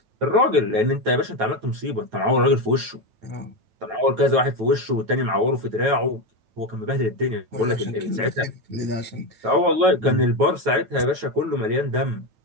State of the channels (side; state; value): left; late; 9.1 ms